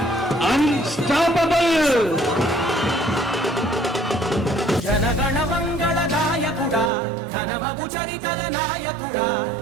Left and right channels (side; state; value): left; drops out; at 6.9 s